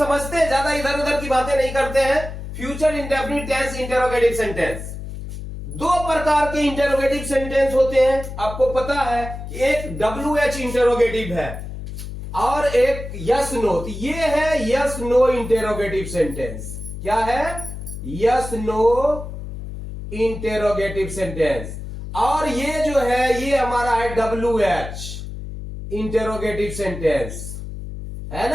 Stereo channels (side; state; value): left; noise; hum, 9 dB below the sound